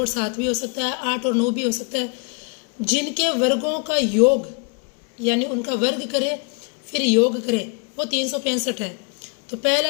7 भी हो सकता है, 8 और 9 भी हो सकता है, जिनके वर्गों का योग यानी उनका वर्ग करें फिर योग करें वो 365 है। तो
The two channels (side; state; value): right; quieter; 36.3 dB